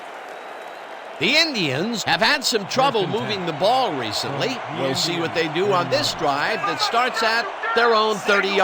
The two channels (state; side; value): identical; both; correlation 1.00